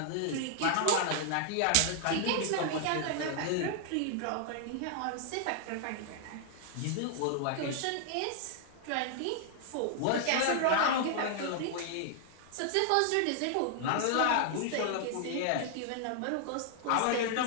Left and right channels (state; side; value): different; both; correlation 0.00